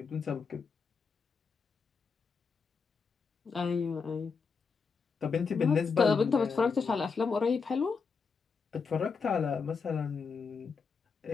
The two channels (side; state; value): right; quieter; 5.2 dB